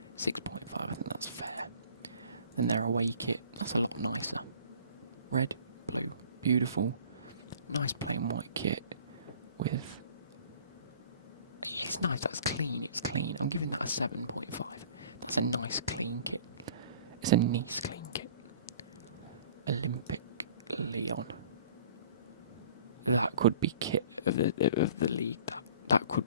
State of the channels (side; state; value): both; inverted; correlation -0.50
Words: 6.5. I think that's fair. Then their away kit. That's a lot nicer. Red, blue, beautiful. Nice plain white kit with. It's nice. That's clean. It's clean. I'm giving that a 7.5. That's a nice clean kit. It's a Nice clean kit. Olympic Lyon. That could be kit of the league. That